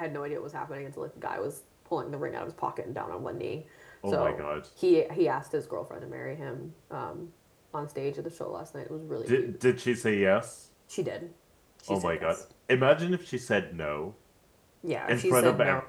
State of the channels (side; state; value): both; identical; correlation 1.00